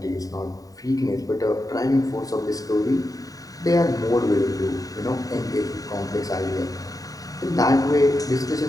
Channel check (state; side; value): late; right; 0.18 ms